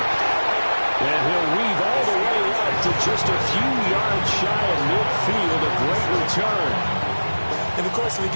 And he'll weave all the way up to just a few yards shy of midfield. A great return. In the course of the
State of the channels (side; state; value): both; inverted; correlation -1.00